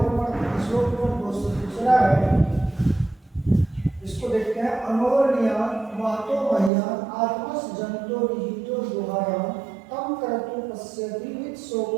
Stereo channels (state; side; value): drops out; left; at 6.7 s